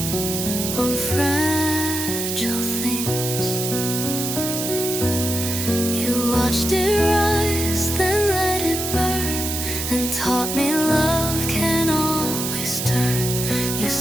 on fragile themes. You watched it rise, then let it burn, and taught me love can always turn. You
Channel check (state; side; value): noise; right; hiss, 3 dB below the sound